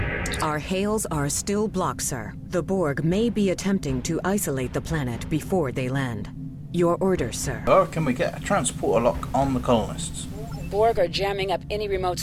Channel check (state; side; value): identical; both; correlation 1.00